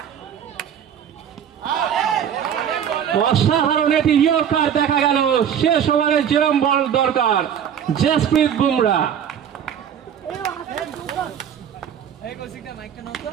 অসাধারণ এটি ইয়র্কার দেখা গেল। শেষ ওভারে যেরম বল দরকার, জসপ্রীত বুমরা।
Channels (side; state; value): left; quieter; 8.8 dB